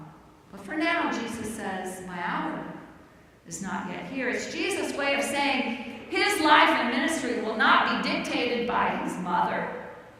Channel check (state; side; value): identical; both; correlation 1.00